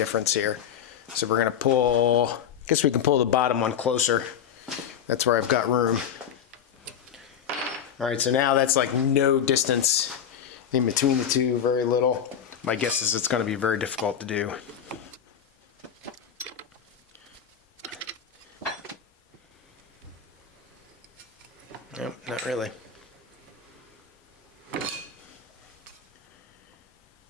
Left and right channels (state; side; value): quieter; right; 8.4 dB